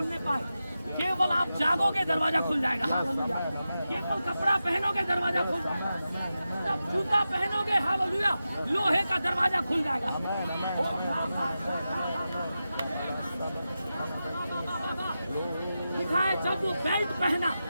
पाए। केवल आप जागोगे दरवाजा खुल जाएगा। हालेलुया। केवल कपड़ा पहनोगे दरवाजा खुल जाएगा। जब जूता पहनोगे हालेलुया लोहे का दरवाजा खुल जाएगा। लिखा है जब वो बेल्ट पहना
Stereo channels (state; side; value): inverted; both; correlation -0.91